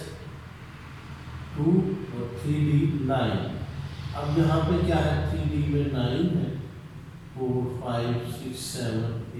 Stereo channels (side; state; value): both; identical; correlation 1.00